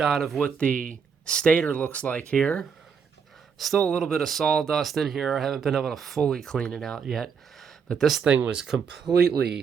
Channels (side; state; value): left; quieter; 6.4 dB